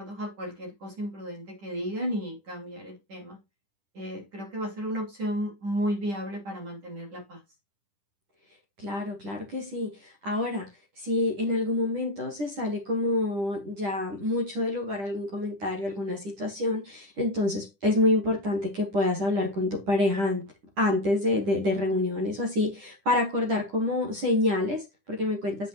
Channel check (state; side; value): late; left; 10 ms